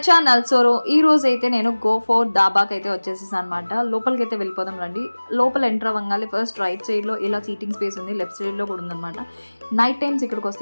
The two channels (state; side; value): inverted; both; correlation -1.00